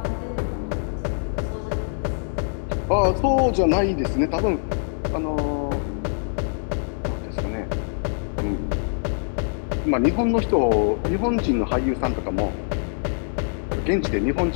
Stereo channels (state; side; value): silent; right; digital silence